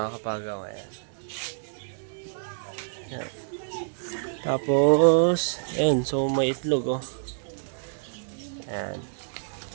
kapagaw. Ayan. Ayan. Tapos, ayan. So, may itlog, oh. Ayan.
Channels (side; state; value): left; silent; digital silence